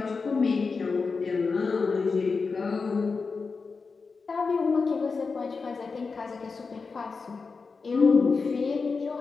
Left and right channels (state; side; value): quieter; right; 4.6 dB